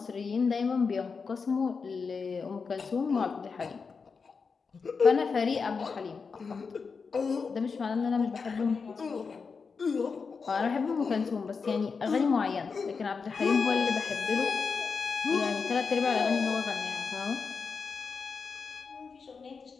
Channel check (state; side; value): quieter; right; 5.1 dB